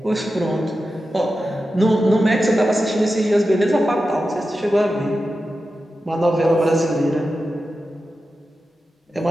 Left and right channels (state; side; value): normal; both; correlation 0.92